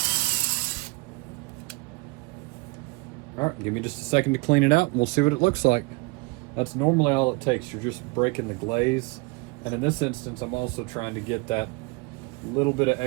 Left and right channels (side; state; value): left; quieter; 27.3 dB